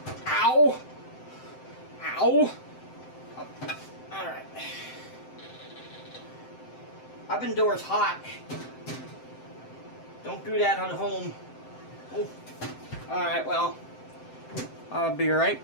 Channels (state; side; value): late; right; 7.8 ms